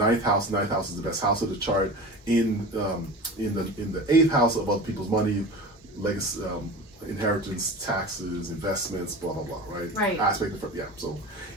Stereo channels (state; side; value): normal; both; correlation 0.33